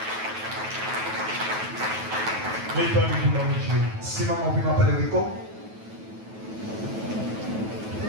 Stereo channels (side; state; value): left; late; 9.3 ms